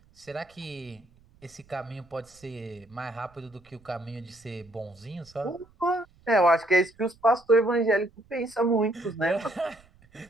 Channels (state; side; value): noise; right; rumble, 29 dB below the sound